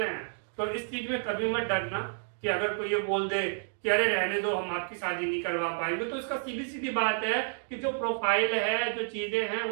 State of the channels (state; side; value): silent; left; digital silence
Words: हैं। तो इस चीज में कभी मत डरना कि अगर कोई ये बोल दे कि अरे रहने दो, हम आपकी शादी नहीं करवा पाएंगे, तो इसका सीधी सीधी बात है कि जो प्रोफाइल है, जो चीजें हैं,